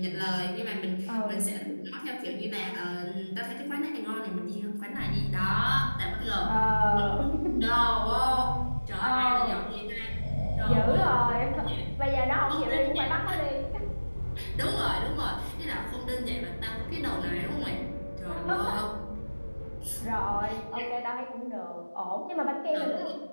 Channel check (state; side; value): inverted; both; correlation -1.00